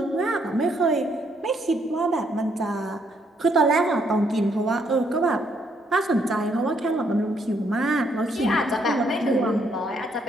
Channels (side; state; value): both; normal; correlation 0.71